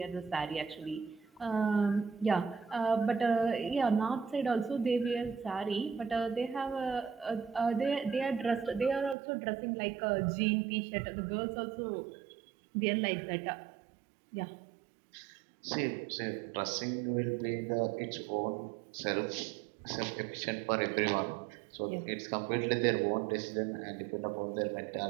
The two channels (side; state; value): left; drops out; at 9.2 s